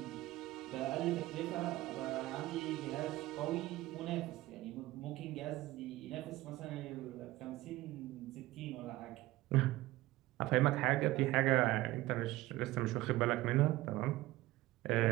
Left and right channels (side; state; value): left; quieter; 17.7 dB